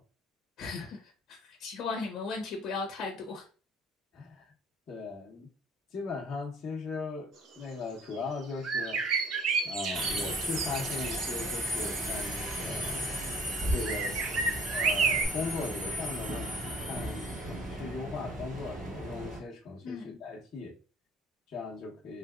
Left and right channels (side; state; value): both; normal; correlation 0.52